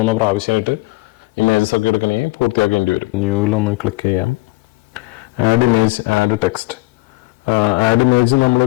പ്രാവശ്യമായിട്ട് ഇമേജസ് ഒക്കെ എടുക്കണമെങ്കിൽ പൂർത്തിയാക്കേണ്ടി വരും. ന്യൂവിലൊന്ന് ക്ലിക്ക് ചെയ്യാം. Add image, add text. Add image നമ്മൾ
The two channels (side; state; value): right; quieter; 23.6 dB